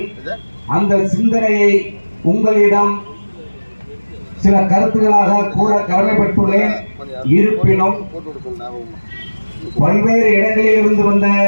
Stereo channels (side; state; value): both; inverted; correlation -1.00